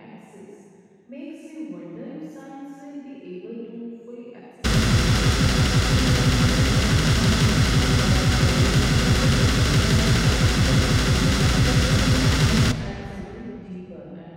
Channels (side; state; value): both; identical; correlation 1.00